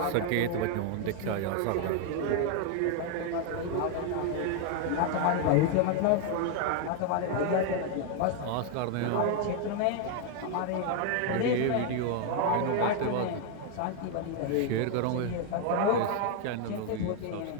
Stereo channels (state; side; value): different; both; correlation 0.00